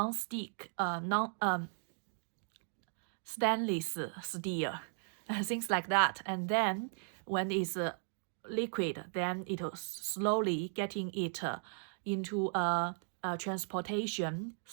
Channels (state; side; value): silent; left; digital silence